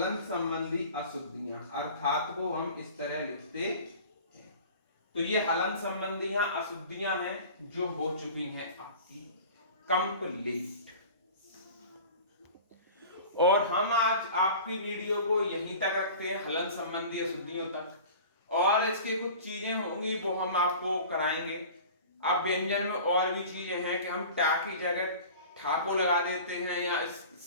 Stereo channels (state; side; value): inverted; both; correlation -0.40